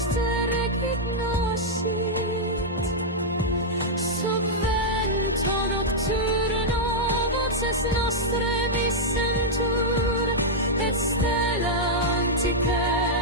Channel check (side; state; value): both; normal; correlation -0.06